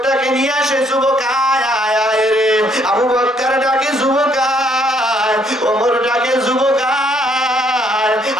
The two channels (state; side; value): normal; both; correlation 0.67